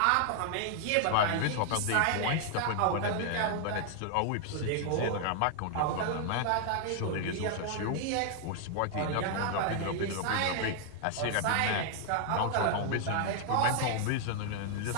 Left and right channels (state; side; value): different; both; correlation 0.00